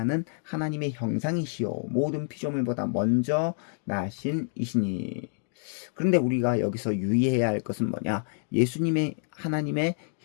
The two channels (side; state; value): right; silent; digital silence